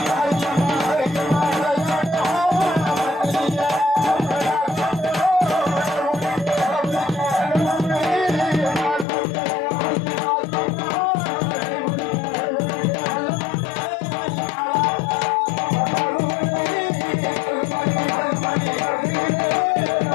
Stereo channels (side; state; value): right; drops out; at 9.1 s